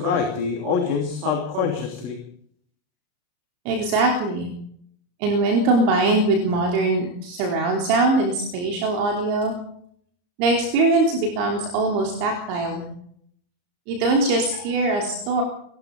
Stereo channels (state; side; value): late; left; 34 ms